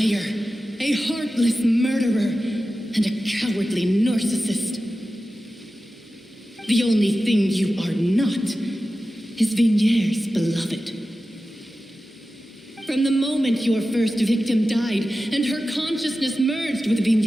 a heartless murderer, and a cowardly narcissist. The only thing you are not is Vignier's beloved. From the moment your first victim died and her consciousness merged with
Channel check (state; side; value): normal; both; correlation 0.94